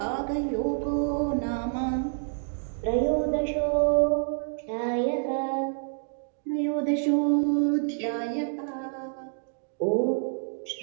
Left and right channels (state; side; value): silent; left; digital silence